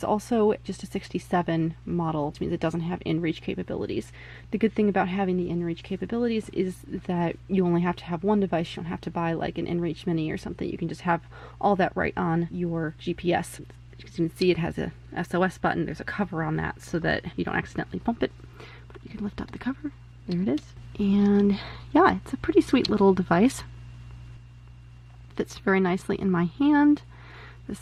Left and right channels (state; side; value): identical; both; correlation 1.00